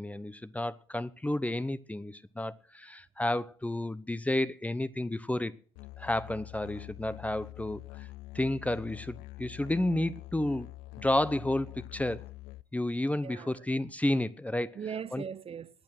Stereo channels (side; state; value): both; normal; correlation 0.92